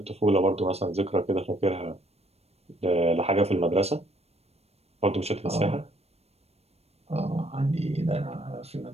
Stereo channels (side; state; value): left; late; 0.30 ms